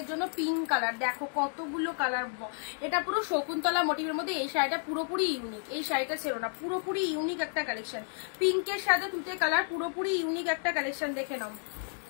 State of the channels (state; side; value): silent; right; 57 dB below the other